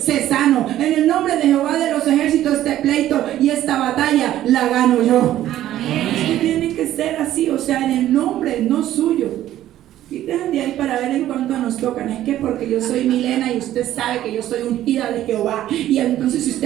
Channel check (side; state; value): left; quieter; 13.0 dB